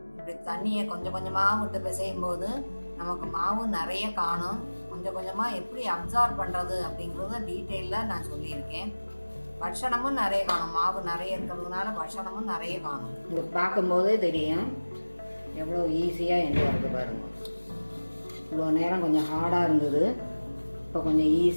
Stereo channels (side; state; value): both; inverted; correlation -1.00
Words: இப்படி தண்ணியை கொஞ்சம் கொஞ்சமாக விட்டு பிசையும் போது நமக்கு மாவு நிறைய காணும். கொஞ்சம் கொஞ்சமாக எப்படி அப்சார்ப் பண்ணுறது அப்படிங்கிறத டீட்டெயிலாக நான் சொல்லியிருக்கேன். பட்சணமும் நிறைய காணும், மாவு நிறைய இருக்கிறதுனால பட்சணமும் நிறைய காணும். இது பார்க்கும்போதே தெரியும் எவ்வளோ ஈஸியாக என்று வருது பாருங்க. இவ்வளோ நேரம் கொஞ்சம் ஹார்டாக இருந்தது, இப்போ கொஞ்சம்